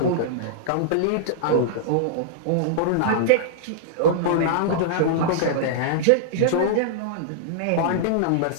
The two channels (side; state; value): both; different; correlation -0.02